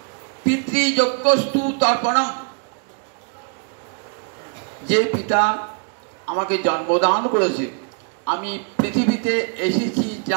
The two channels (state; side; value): quieter; left; 38.9 dB